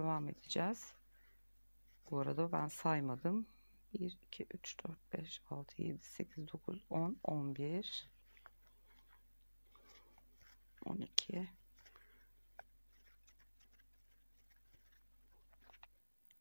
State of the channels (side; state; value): both; inverted; correlation -1.00